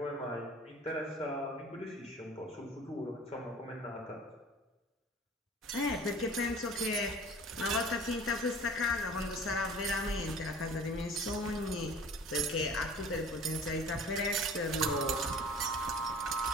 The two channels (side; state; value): both; normal; correlation 0.44